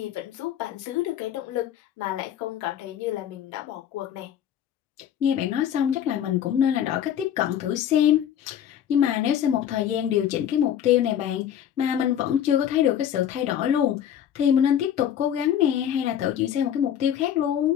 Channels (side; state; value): right; quieter; 9.9 dB